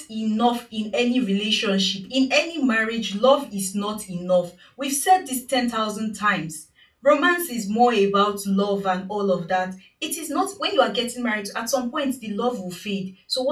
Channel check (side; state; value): both; identical; correlation 1.00